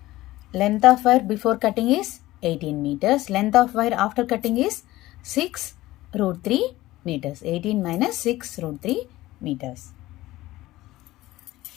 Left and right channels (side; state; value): right; quieter; 17.1 dB